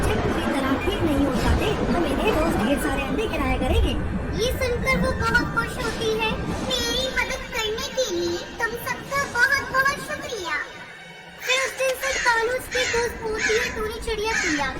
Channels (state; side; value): identical; both; correlation 1.00